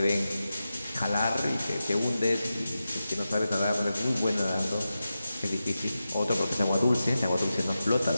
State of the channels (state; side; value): inverted; both; correlation -0.92